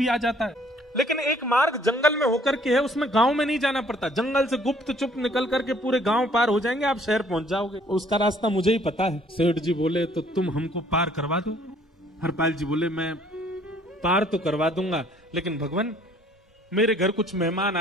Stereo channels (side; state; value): both; normal; correlation 0.60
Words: आ जाता है, लेकिन एक मार्ग जंगल में होकर के है, उसमें गांव में नहीं जाना पड़ता, जंगल से गुप्त चुप निकल करके पूरे गांव पार हो जाएंगे, आप शहर पहुंच जाओगे, उसका रास्ता मुझे ही पता है। सेठ जी बोले तो तुम हमको पार करवा दो। हरपाल जी बोले मैं पार तो करवा दूंगा, लेकिन भगवान मेरे घर कुछ मेहमान